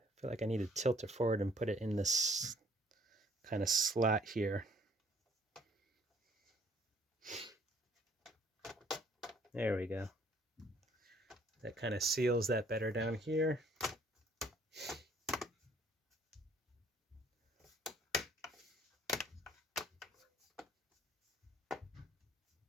feel like I need to tilt it forward and put it in this kind of slot here. There we go. That kind of seals that better down here.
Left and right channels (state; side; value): normal; both; correlation 0.61